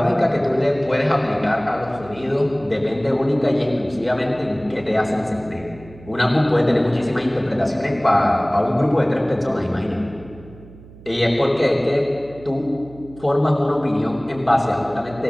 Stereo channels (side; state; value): right; noise; hum, 20 dB below the sound